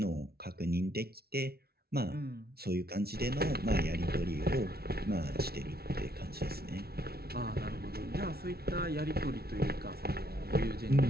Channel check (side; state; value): left; late; 0.45 ms